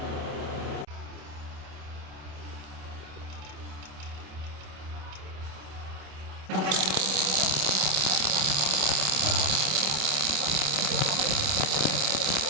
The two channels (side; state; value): left; late; 27 ms